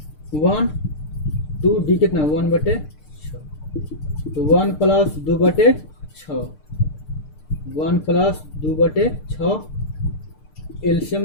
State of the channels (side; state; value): right; late; 6.6 ms